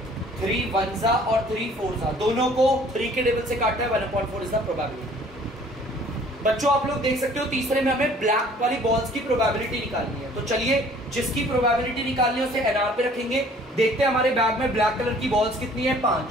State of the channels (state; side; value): normal; both; correlation 0.54